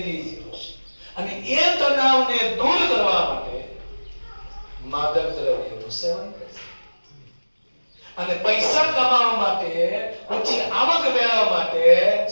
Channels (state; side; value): inverted; both; correlation -1.00